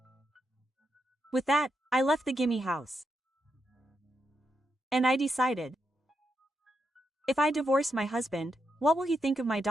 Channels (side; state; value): both; normal; correlation 0.83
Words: With that, I left the gimme house. And I decided. If I divorce my husband, what will he think of my